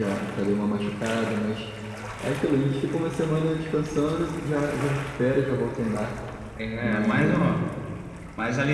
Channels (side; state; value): both; identical; correlation 1.00